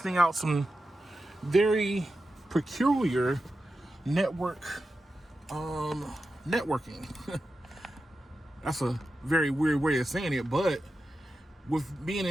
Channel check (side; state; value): both; normal; correlation 0.91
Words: out some very peculiar networking. That's a very weird way of saying it, but with being